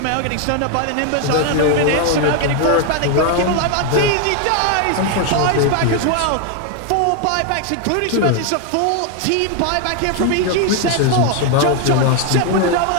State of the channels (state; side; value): different; both; correlation 0.01